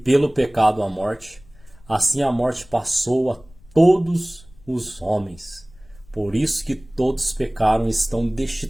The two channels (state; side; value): noise; left; rumble, 25 dB below the sound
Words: pecado a morte, assim a morte passou a todos os homens. Por isso que todos pecaram e estão